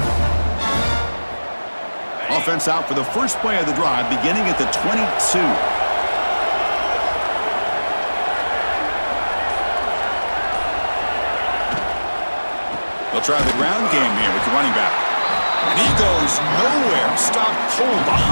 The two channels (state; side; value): inverted; both; correlation -1.00